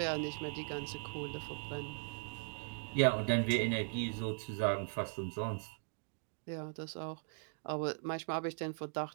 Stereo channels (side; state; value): left; silent; digital silence